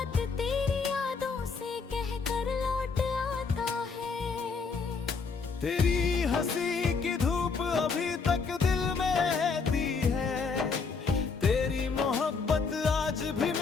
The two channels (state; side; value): quieter; right; 4.9 dB